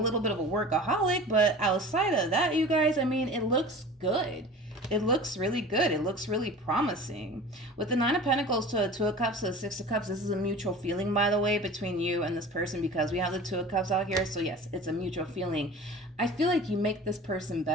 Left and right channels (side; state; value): both; normal; correlation 0.39